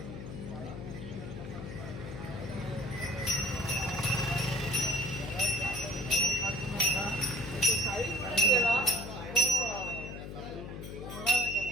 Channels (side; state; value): left; noise; hum, 9 dB below the sound